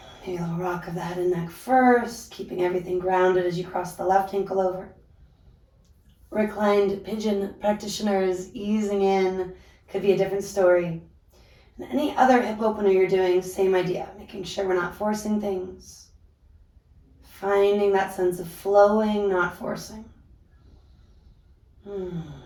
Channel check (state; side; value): identical; both; correlation 1.00